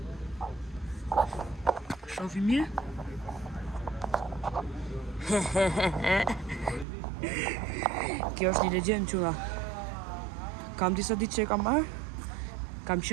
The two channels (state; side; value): drops out; left; at 6.9 s